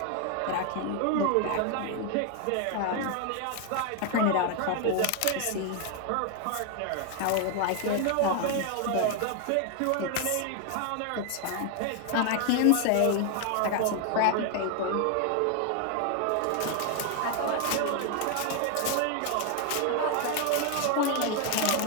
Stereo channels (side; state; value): both; different; correlation 0.00